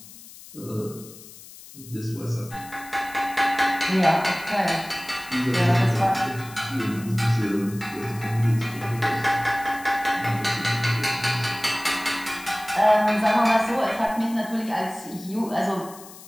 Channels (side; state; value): left; noise; hiss, 18 dB below the sound